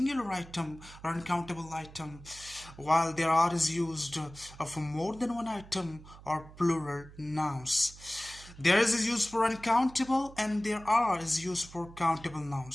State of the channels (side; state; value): right; noise; hum, 19 dB below the sound